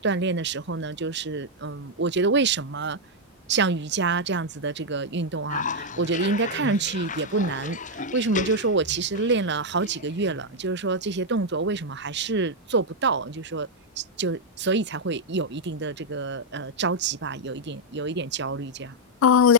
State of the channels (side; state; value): both; normal; correlation -0.02